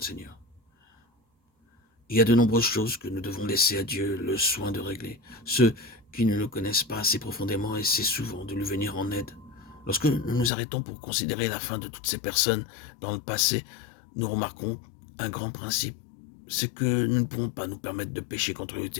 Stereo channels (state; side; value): drops out; right; at 10.5 s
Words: Seigneur. Il y a de nombreuses choses que nous devons laisser à Dieu le soin de régler. Ceux qui ne le connaissent pas assez profondément essaient souvent de lui venir en aide. Lorsque nous nous arrêtons pour considérer la fin de toutes ces personnes dans le passé, nous remarquons un grand principe. C'est que nous ne pouvons pas nous permettre de pécher contre le